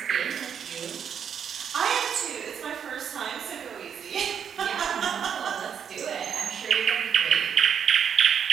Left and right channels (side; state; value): left; quieter; 7.8 dB